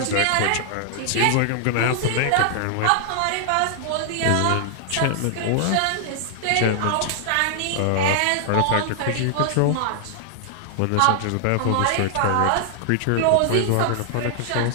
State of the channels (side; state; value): both; different; correlation -0.01